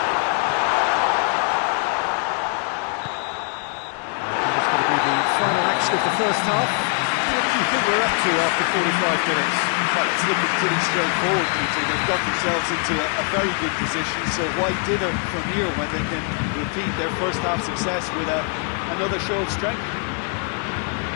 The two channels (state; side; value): quieter; right; 39.6 dB